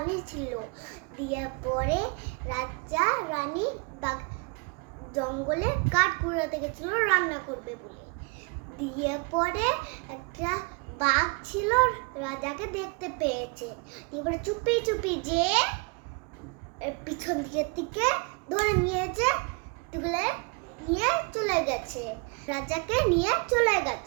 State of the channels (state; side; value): quieter; left; 31.9 dB